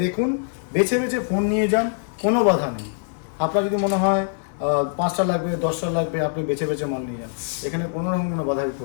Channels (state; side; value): silent; right; digital silence